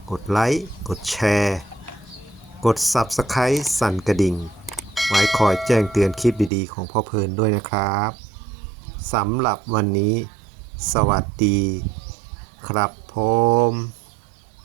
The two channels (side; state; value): left; drops out; at 6.5 s